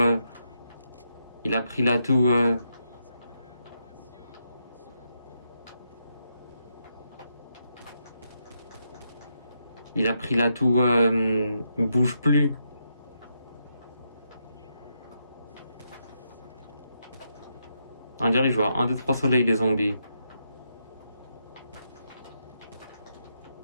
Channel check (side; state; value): both; inverted; correlation -0.81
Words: Il a pris l'atout. Il a pris l'atout. Bouge plus. On dirait que je vois 1, 2, 3 soleils les zombies.